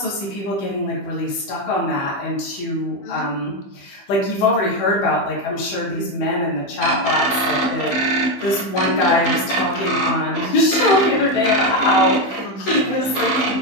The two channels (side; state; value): right; late; 15 ms